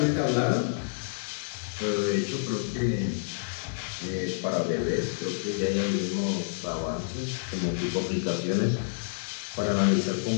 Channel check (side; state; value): right; silent; digital silence